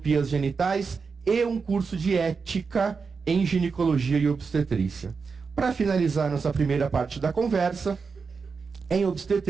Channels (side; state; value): left; quieter; 5.1 dB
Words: genitais e um curso de ética em ginecologia e obstetrícia. Para finalizar nossa primeira parte da conversa, em